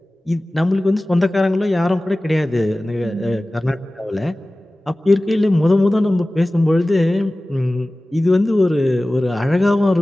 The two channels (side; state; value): both; normal; correlation 0.97